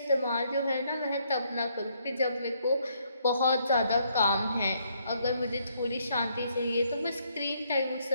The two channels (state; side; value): inverted; both; correlation -0.71